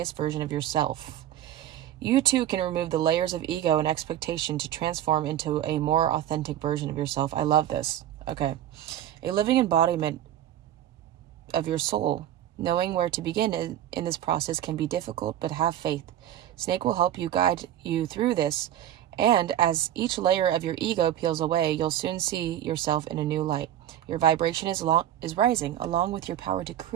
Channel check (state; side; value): quieter; left; 11.8 dB